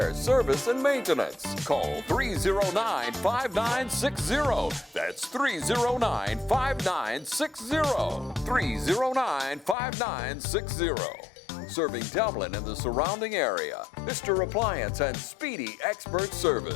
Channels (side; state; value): right; drops out; at 9.8 s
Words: service, and maintenance. Call 309-5960. That's 309-5960. 309-5960. Serving Dublin and the surrounding area. Mr. Appliance and Speedy Expert